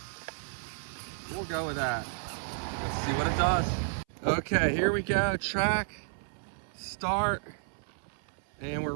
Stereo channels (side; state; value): left; silent; 57 dB below the other